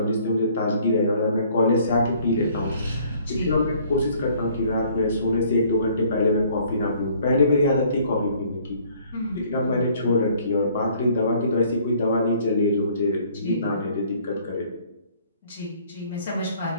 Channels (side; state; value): both; inverted; correlation -0.59